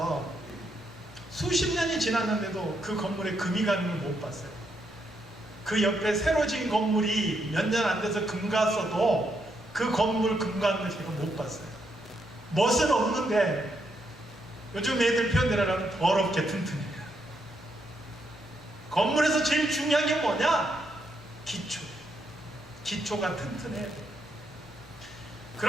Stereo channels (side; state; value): both; normal; correlation 0.78